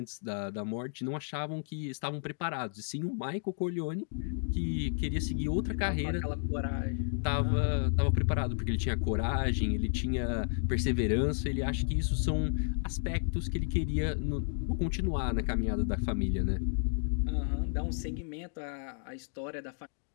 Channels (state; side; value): silent; right; digital silence